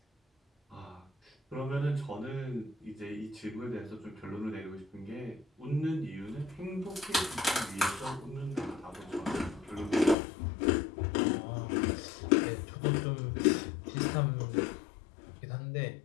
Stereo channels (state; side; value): drops out; right; at 10.2 s